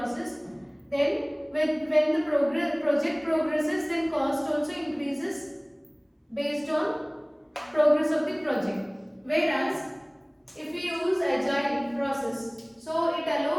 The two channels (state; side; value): identical; both; correlation 1.00